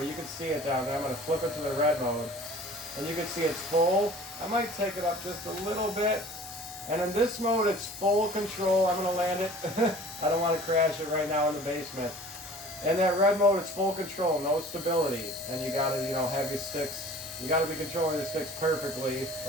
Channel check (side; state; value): both; normal; correlation 0.46